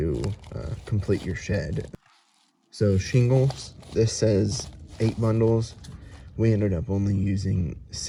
complete your shed. So shingles, this says 8 bundles. We ended up only using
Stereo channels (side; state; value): both; identical; correlation 1.00